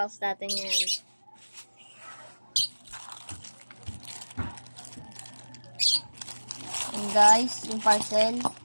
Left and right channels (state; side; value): inverted; both; correlation -1.00